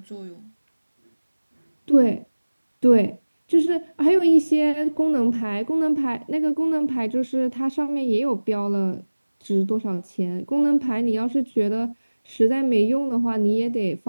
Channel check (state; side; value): inverted; both; correlation -1.00